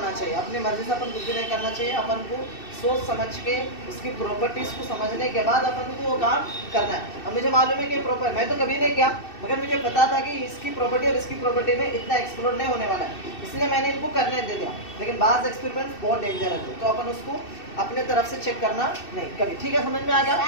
चाहिए. अपनी मर्जी से अपन कुछ भी नहीं करना चाहिए. अपन को सोच समझ के उसकी प्रॉपर्टीज को समझने के बाद अपन को वो काम करना है. अब मुझे मालूम है कि प्रॉपर मैं तो कभी नहीं किया, मगर मुझे पता था कि इसकी प्रॉपर्टी और इसकी प्रॉपर्टी में इतना एक्सप्लोड नहीं होने वाला है, इसलिए मैंने इनको करने दे दिया. लेकिन बाज एक्सपेरिमेंट बहुत डेंजर है, तो अपन उसको अपने तरफ से चेक करना नहीं कभी. ठीक है, समझ में आ गया?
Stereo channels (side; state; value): right; late; 2.6 ms